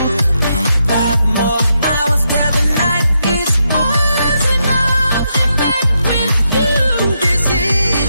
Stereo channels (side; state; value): both; inverted; correlation -0.81